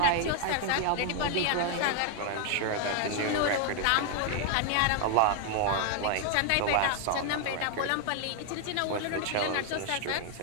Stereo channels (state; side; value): different; both; correlation 0.00